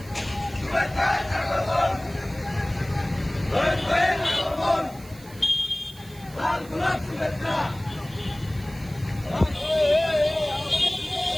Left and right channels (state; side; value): noise; right; hiss, 21 dB below the sound